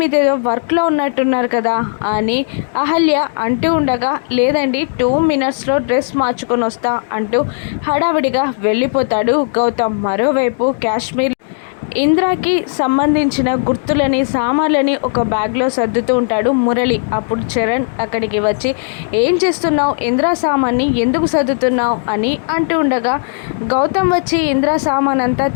వర్క్లో ఉన్నట్టున్నారు కదా అని అహల్య అంటూ ఉండగా లేదండి 2 మినిట్స్లో డ్రెస్ మార్చుకొని వస్తా అంటూ హడావిడిగా వెళ్ళిపోతాడు గౌతమ్. మరోవైపు కాశ్మీర్ ఇంద్రాకి సంబంధించిన గుర్తులని సామాన్లని ఒక బ్యాగ్లో సర్దుతూ ఉంటాడు మురళి. అప్పుడు చరణ్ అక్కడికి వచ్చి ఏం చేస్తున్నావు, ఇంద్రా సామాన్ని ఎందుకు సర్దుతున్నావు అని అంటూ ఉండగా గౌతమ్ వచ్చి ఇంద్రా సామాన్ అంతా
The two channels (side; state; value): right; silent; digital silence